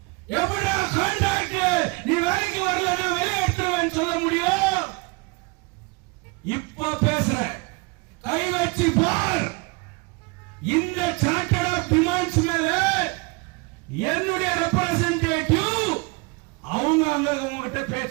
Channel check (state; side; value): quieter; left; 28.1 dB